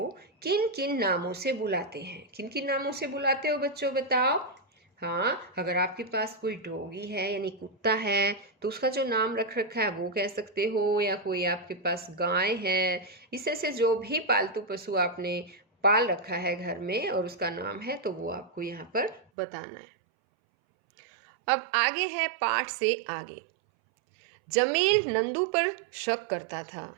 किन किन नामों से बुलाते हैं? किन किन नामों से बुलाते हो बच्चों, बताओ। हाँ, अगर आपके पास कोई डॉगी है यानी कुत्ता है तो उसका जो नाम रख रखा है वो कह सकते हो, या कोई आपके पास गाय है, इससे से जो भी पालतू पशु आपने पाल रखा है घर में और उसका नाम है तो वो आपको यहाँ पर बताना है। अब आगे है पाठ से आगे। जमील नंदू पर शक करता था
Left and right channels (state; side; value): drops out; left; at 19.2 s